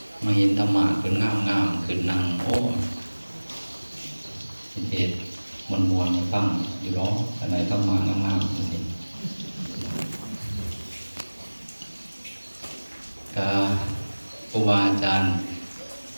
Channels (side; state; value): both; inverted; correlation -1.00